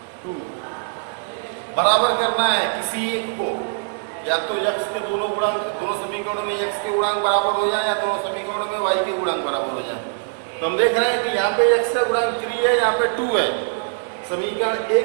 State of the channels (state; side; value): silent; left; digital silence